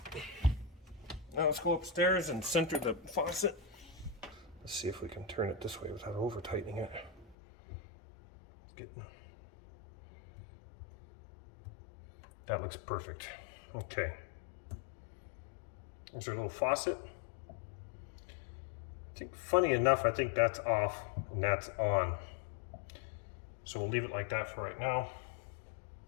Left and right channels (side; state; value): right; drops out; at 7.4 s